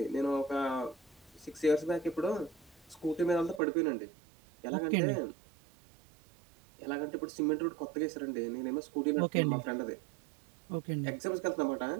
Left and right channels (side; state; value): left; drops out; at 3.6 s